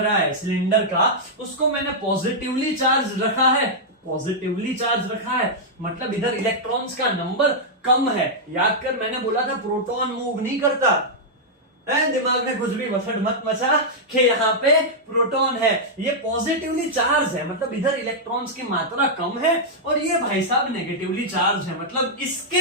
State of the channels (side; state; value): both; normal; correlation -0.07